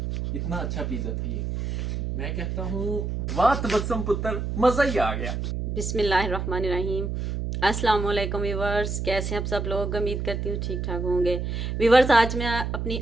इतना अच्छा पिज्जा था ये। मैं कहता हूँ वाह तबस्सुम पुत्र, मजा ही आ गया। बिस्मिल्लाहिर्रहमानिर्रहीम। अस्सलाम वालेकुम व्यूवर्स, कैसे हैं आप सब लोग? उम्मीद करती हूँ ठीक ठाक होंगे। व्यूवर्स आज मैं अपनी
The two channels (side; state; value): right; noise; hum, 3 dB below the sound